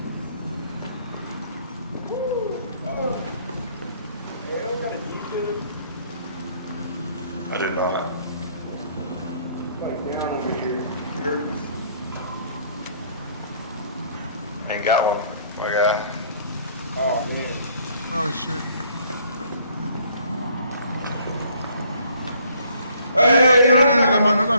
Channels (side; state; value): both; inverted; correlation -0.61